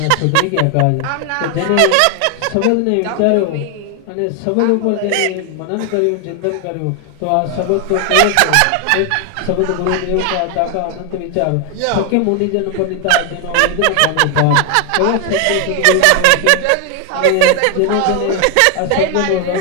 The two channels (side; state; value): both; different; correlation 0.01